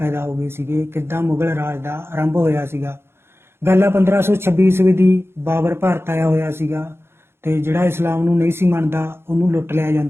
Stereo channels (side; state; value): left; late; 0.12 ms